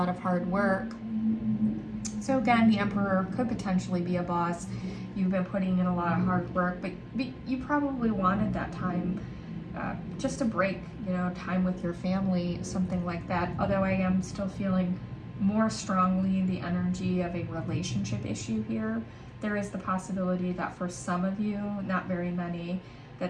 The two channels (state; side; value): identical; both; correlation 1.00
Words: of hard work. So again, the Emperor could potentially be a boss. You've been putting in a lot of hard work, but you probably wanted that time, just a break, you know, time with your family, something like that. Although I am still feeling more strongly the energy of a relationship issue here. There is the possibility that for some of you, not very many,